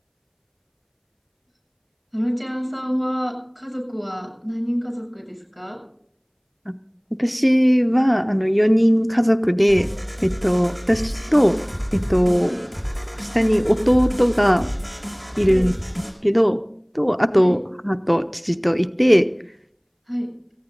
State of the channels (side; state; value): both; identical; correlation 1.00